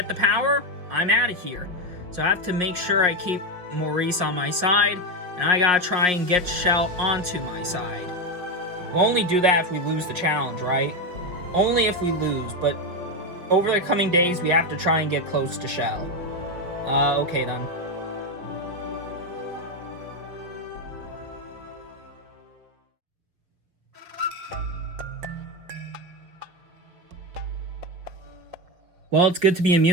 the power, I'm out of here. So I have to make sure I keep Maurice on my side, and I gotta try and get Shell onto my side. We'll only do that if we lose the challenge, right? Only if we lose, but over the coming days, we have to try and get close to Shell. Okay then. Well, it's good to be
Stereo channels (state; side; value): late; left; 5.7 ms